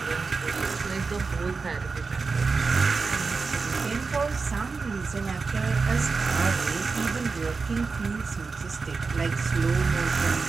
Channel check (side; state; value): left; quieter; 4.5 dB